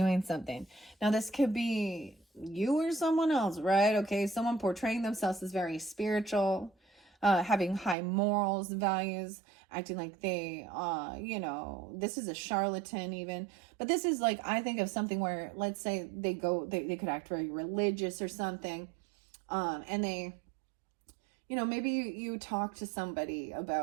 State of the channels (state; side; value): drops out; left; at 8.0 s